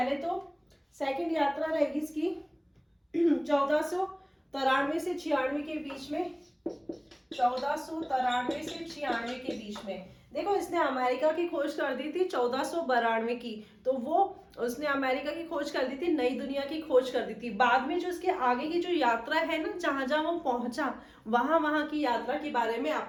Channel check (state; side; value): identical; both; correlation 1.00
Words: तो सेकंड यात्रा रहेगी इसकी 1493 से 96 के बीच में। 1493 से 96 के बीच में देखो, इसने अमेरिका की खोज कर दी थी 1492 की। तो वो उसने अमेरिका की खोज कर दी थी, नई दुनिया की खोज कर दी थी। बाद में जो इसके आगे की जो यात्रा है ना, जहां जहां वो पहुंचा, वहां की यात्रा के बारे में